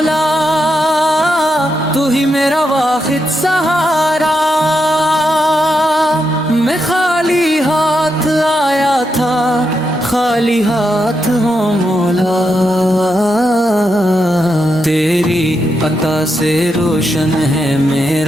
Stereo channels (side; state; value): both; normal; correlation 0.84